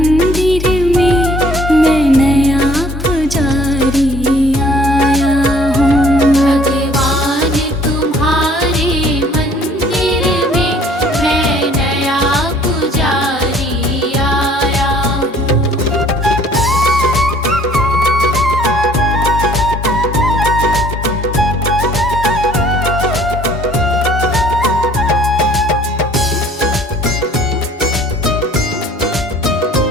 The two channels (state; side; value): normal; both; correlation 0.56